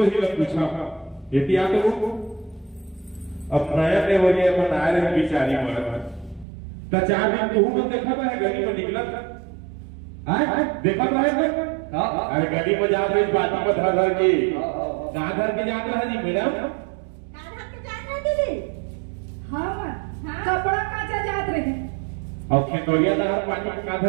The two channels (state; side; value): drops out; left; at 6.5 s